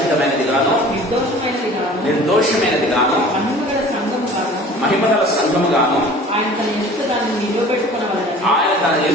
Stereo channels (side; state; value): both; normal; correlation 0.45